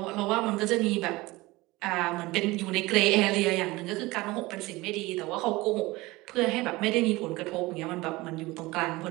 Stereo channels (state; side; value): quieter; left; 20.8 dB